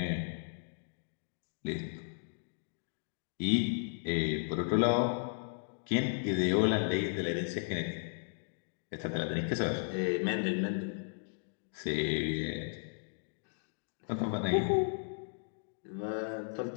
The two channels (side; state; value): right; silent; digital silence